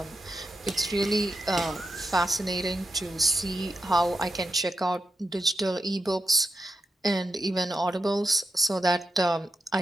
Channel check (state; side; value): normal; both; correlation 0.85